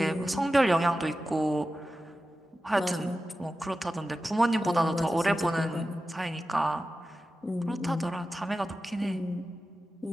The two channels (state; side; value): normal; both; correlation 0.93